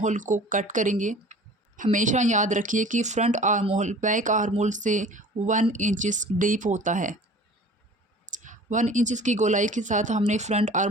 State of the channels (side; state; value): both; normal; correlation 0.45